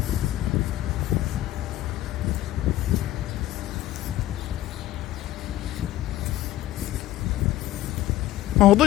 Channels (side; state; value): right; quieter; 14.7 dB